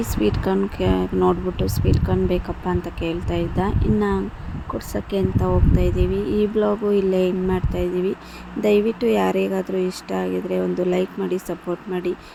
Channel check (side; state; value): both; identical; correlation 1.00